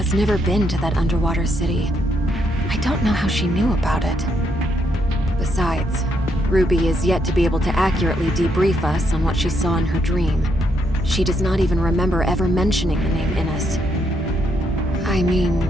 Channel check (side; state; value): both; normal; correlation 0.76